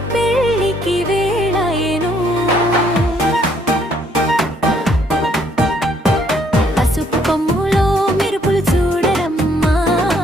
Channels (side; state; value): both; normal; correlation 0.67